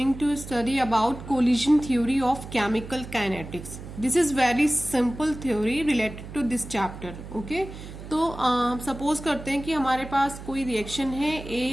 to study about collision theory of chemical kinetics. This is very simple theory related to this chapter. Okay? तो suppose करते हैं कि हमारे पास कोई reaction है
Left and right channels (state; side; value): noise; right; hum, 12 dB below the sound